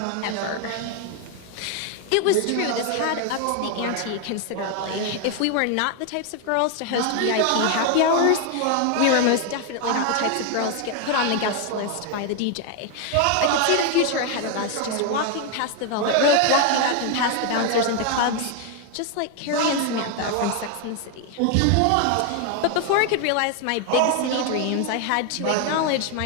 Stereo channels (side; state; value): both; different; correlation 0.01